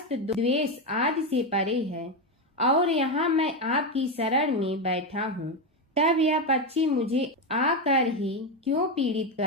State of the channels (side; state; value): both; normal; correlation 0.10